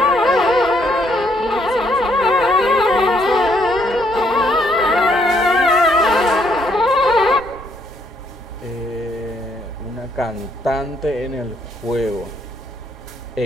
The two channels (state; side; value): normal; both; correlation 0.70